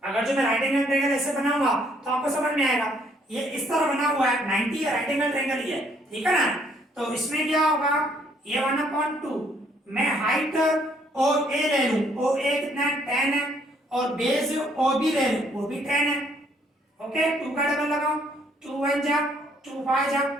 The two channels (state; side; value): normal; both; correlation 0.66